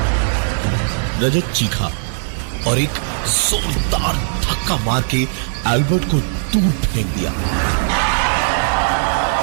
Rajat चीखा और एक जोरदार धक्का मार के एल्बर्ट को दूर फेंक दिया।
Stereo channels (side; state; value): left; silent; digital silence